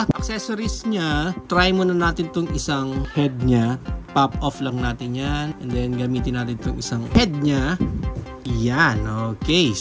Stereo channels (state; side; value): identical; both; correlation 1.00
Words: accessories niya, try muna natin tong isang head niya. Pop off lang natin yan. And then, gamitin natin tong isang head niya. Yan. Okay.